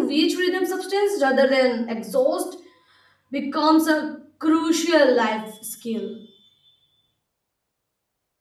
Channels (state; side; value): identical; both; correlation 1.00